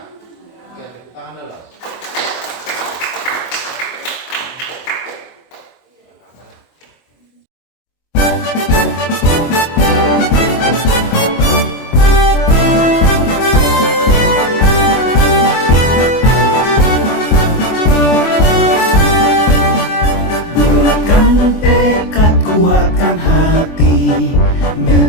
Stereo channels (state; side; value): late; right; 24 ms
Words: Oke, tepuk tangan dulu. Kuatkan hati,